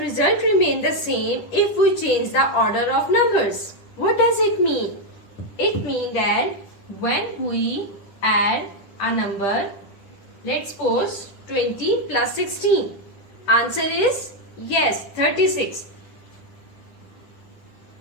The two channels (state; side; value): late; right; 9.9 ms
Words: result remain the same if we change the order of numbers. What does it mean? It means that when we add a number, let's suppose 20 plus 16. Answer is yes, 36.